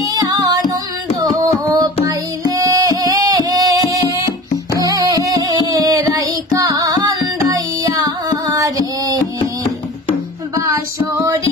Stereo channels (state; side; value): normal; both; correlation 0.38